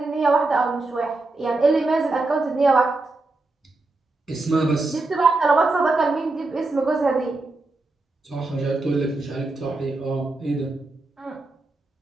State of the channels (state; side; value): quieter; left; 3.2 dB